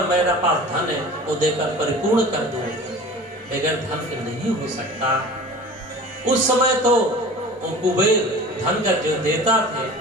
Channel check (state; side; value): normal; both; correlation 0.40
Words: मेरा पास धन है, वो देकर परिपूर्ण कर दो। बगैर धन के नहीं हो सकता। उस समय तो वो कुबेर धन का जो देता थे,